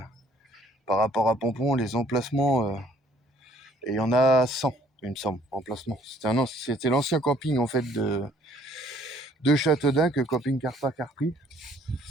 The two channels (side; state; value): both; normal; correlation 0.60